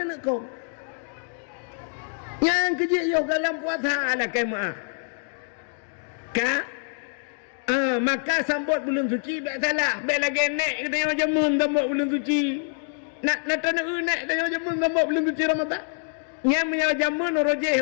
aku. Yang kejik yo dalam puasa ala kemah. Maka sambut bulan suci tak salah. Baik lagi naik kita yang jamun sambut bulan suci. Nak tanah naik kita yang jamun sambut bulan suci Ramadan. Yang menyala jamun rojeh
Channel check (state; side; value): silent; right; 58 dB below the other